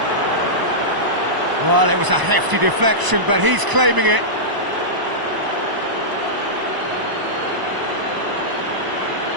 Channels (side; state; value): left; late; 1.0 ms